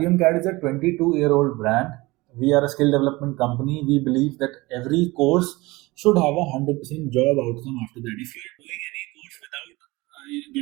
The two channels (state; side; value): quieter; left; 21.9 dB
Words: CAD is a 22-year-old brand. We are a skill development company. We believe that every course should have a 100% job outcome after that. If you are doing any course without